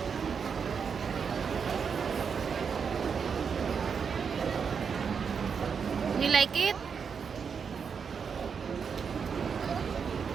You like it?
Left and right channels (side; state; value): left; quieter; 6.3 dB